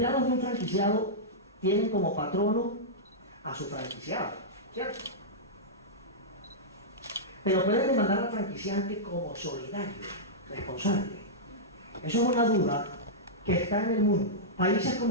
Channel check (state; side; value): normal; both; correlation -0.12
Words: de un franquiciado tienen como patrono a su franquiciado, ¿cierto? Pero pueden demandar al franquiciante como solidario, responsable. Eso es una duda que está en el mundo. Países